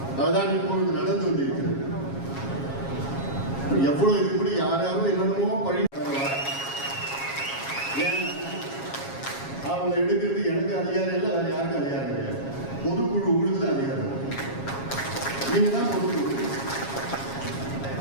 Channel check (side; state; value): right; late; 7.3 ms